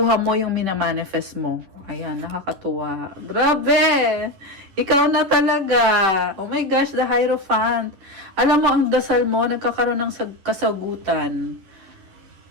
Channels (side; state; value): left; late; 10 ms